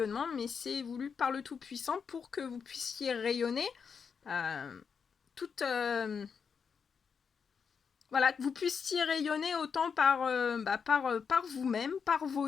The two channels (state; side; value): quieter; right; 6.2 dB